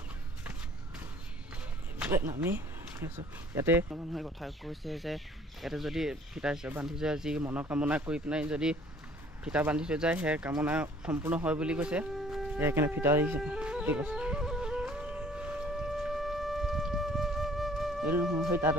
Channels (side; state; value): both; normal; correlation 0.56